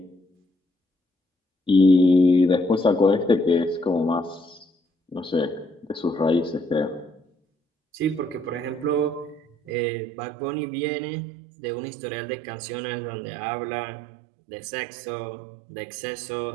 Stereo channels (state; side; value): drops out; left; at 9.7 s